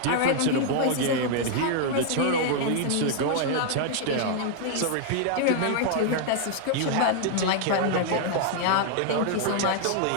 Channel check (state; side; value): different; both; correlation 0.00